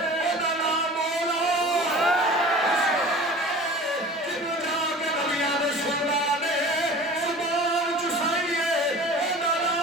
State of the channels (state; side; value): normal; both; correlation 0.40